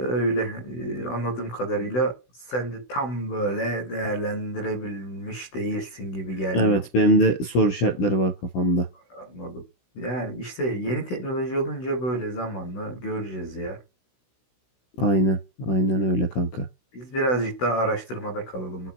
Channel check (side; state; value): right; late; 16 ms